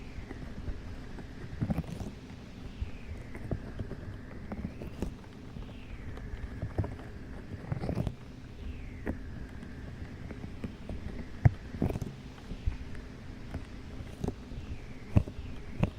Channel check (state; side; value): identical; both; correlation 1.00